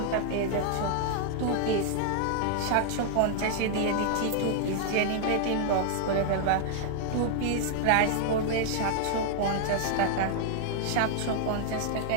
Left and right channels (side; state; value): both; different; correlation -0.01